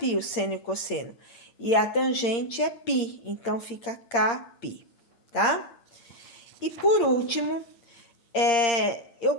o seno e o cosseno. E a tangente é π, então fica κπ, tá? E por último, eu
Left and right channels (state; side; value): late; right; 8.6 ms